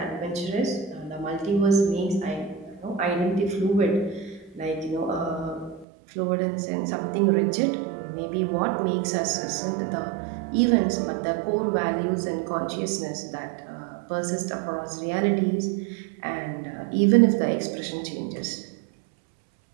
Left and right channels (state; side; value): drops out; left; at 5.9 s